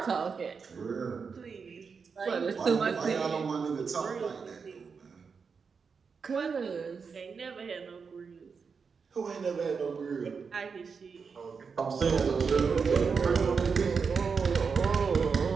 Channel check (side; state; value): left; quieter; 5.5 dB